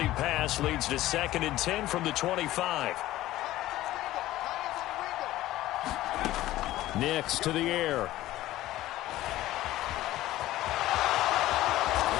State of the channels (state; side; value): quieter; right; 15.5 dB